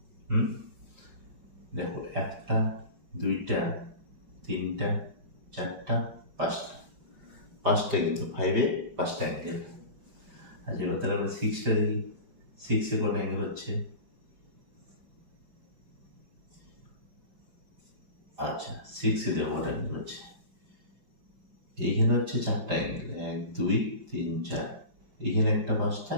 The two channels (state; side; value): late; left; 5.2 ms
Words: দেখো, একটা, দুইটা, তিনটা, চারটা, পাঁচটা কিন্তু ফাইভে পাঁচটা অ্যাঙ্গেল। আচ্ছা, এবার তাহলে আমরা সিক্সটা দেখি। সিক্সে কটা অ্যাঙ্গেল হচ্ছে? আচ্ছা, সিক্সে দেখো কটা অ্যাঙ্গেল হচ্ছে? এইখানে হচ্ছে চারটা অ্যাঙ্গেল, 1, 2, 3, 4। এখানে একটা পাঁচটা,